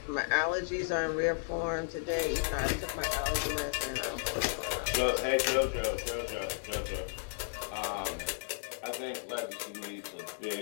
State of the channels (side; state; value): right; silent; digital silence